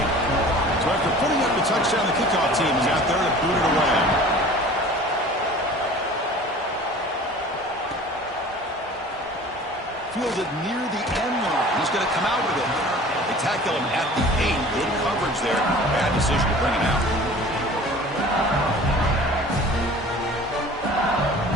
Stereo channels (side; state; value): both; normal; correlation 0.44